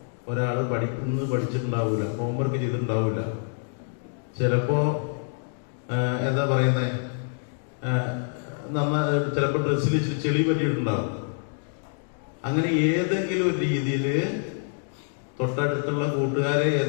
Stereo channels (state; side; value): silent; right; 61 dB below the other